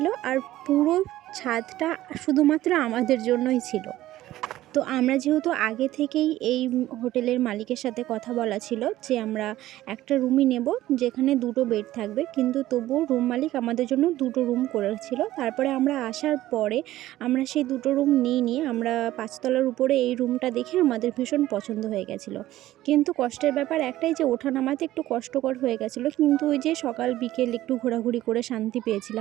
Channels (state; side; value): quieter; left; 15.0 dB